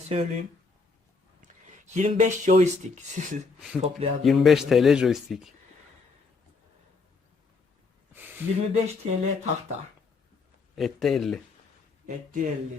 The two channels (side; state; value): right; quieter; 4.3 dB